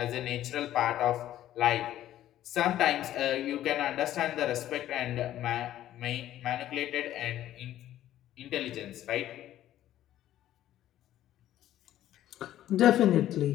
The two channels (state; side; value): quieter; right; 12.8 dB